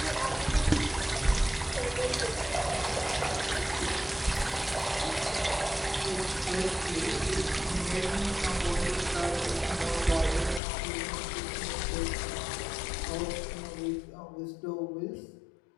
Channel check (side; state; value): right; drops out; at 10.6 s